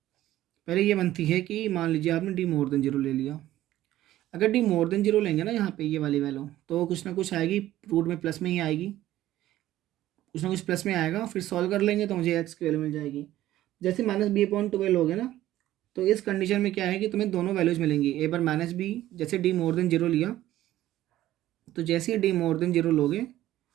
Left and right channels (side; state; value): left; quieter; 14.3 dB